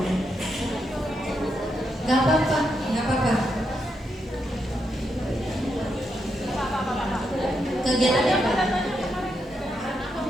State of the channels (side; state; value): both; normal; correlation 0.82